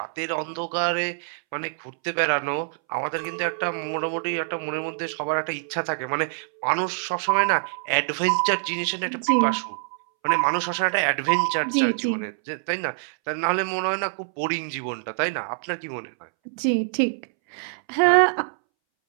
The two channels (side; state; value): left; silent; 62 dB below the other